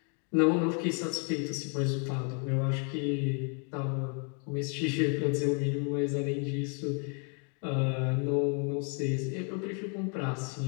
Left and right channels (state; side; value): quieter; right; 39.9 dB